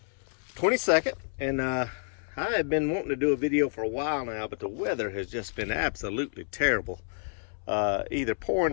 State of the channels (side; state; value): right; silent; 58 dB below the other